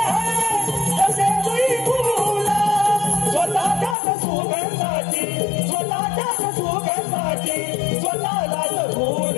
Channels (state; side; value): drops out; right; at 4.0 s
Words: आहे तसे तुई फूल स्वतःच्याच सुगंधाची स्वतःलाच फूल